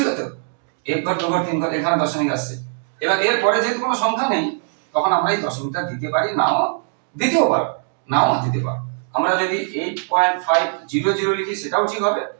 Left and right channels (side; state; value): left; silent; 65 dB below the other